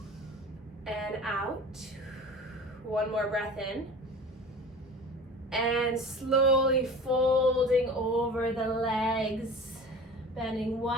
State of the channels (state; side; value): normal; both; correlation 0.38